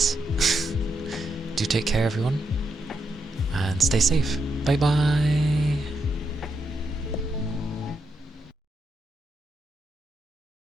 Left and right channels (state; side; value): normal; both; correlation 0.82